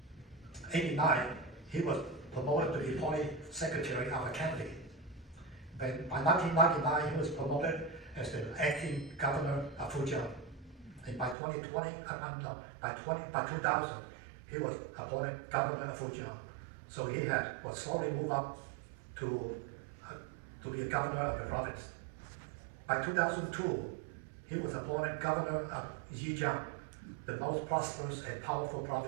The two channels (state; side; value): drops out; left; at 11.4 s